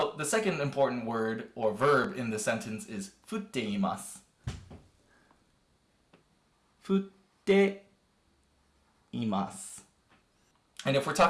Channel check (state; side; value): identical; both; correlation 1.00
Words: the second important word or verb in the sentence is 降っています. 降っています. And if we're